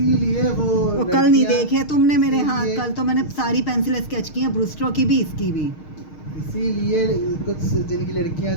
वो कल नहीं लड़कियां, देखे तुमने मेरे हाथ, इसीलिए- कल तो मैंने सारी पेंसिल स्केच की हैं, ब्रूस्टरो की भी, इसकी भी। इसीलिए कुछ जिनकी लड़कियां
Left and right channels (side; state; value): right; late; 6.5 ms